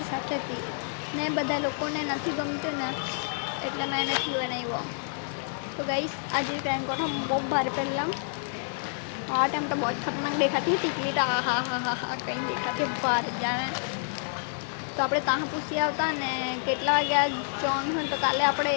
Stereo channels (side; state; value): right; silent; 59 dB below the other